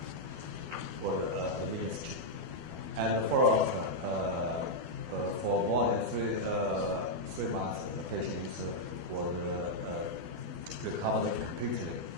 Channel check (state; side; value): late; left; 12 ms